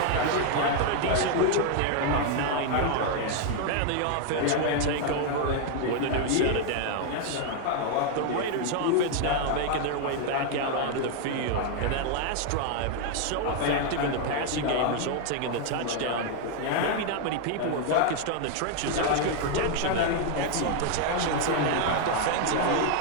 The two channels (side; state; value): both; different; correlation 0.00